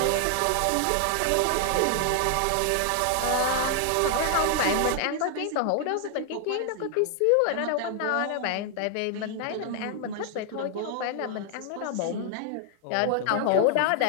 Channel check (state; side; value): different; both; correlation 0.00